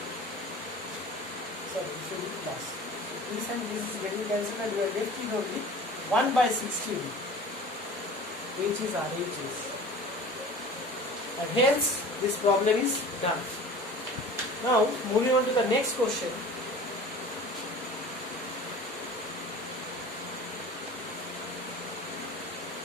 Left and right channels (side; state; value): both; normal; correlation 0.41